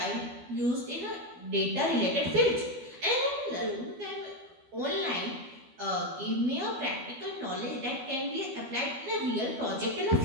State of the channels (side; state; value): left; late; 12 ms